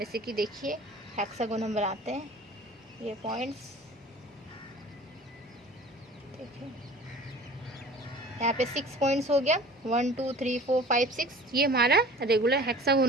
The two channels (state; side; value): normal; both; correlation 0.44